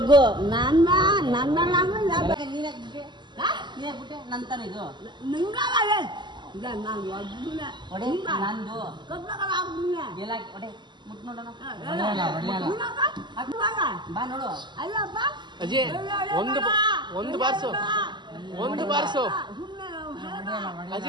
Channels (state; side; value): late; left; 0.22 ms